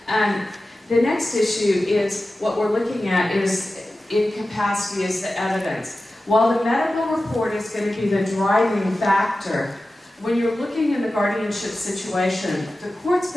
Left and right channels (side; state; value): both; normal; correlation 0.94